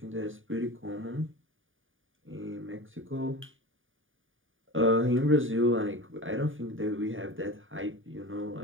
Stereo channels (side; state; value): left; late; 0.58 ms